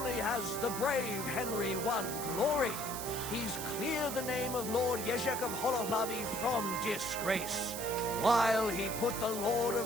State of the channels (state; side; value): noise; right; hiss, 6 dB below the sound